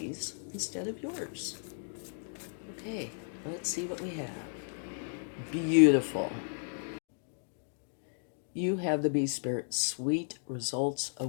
instead of yours. Okay, let's see what we have. Beautiful. You have the Bee Spirit, sweet results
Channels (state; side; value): silent; right; digital silence